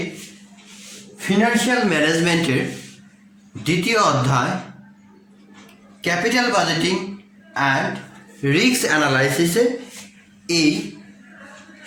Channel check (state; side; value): identical; both; correlation 1.00